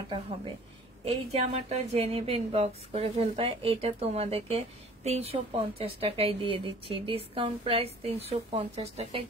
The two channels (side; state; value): both; normal; correlation 0.50